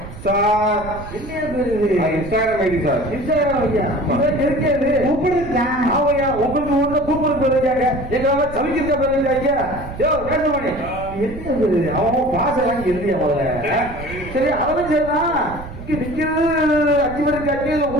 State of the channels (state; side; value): noise; right; rumble, 13 dB below the sound